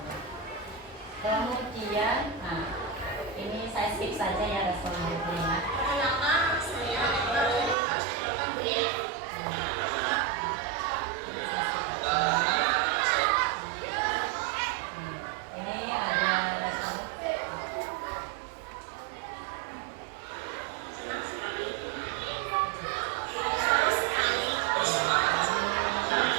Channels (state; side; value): drops out; left; at 7.8 s